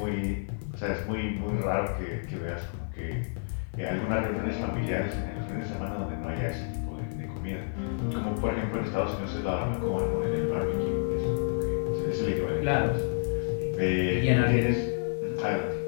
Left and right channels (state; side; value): silent; right; 58 dB below the other